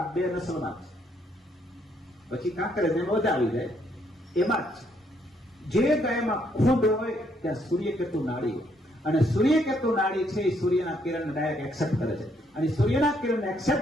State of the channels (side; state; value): both; normal; correlation 0.71